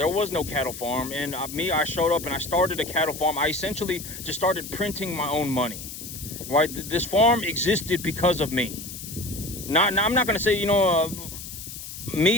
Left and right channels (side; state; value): left; noise; hiss, 11 dB below the sound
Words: was no cattle farm, and I showed up and I started a cattle farm. I essentially just started printing my own money, right? This farm existed because of me. I'm not going to say,